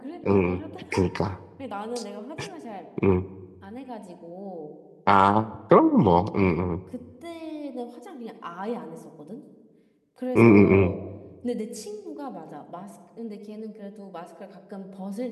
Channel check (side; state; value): both; identical; correlation 1.00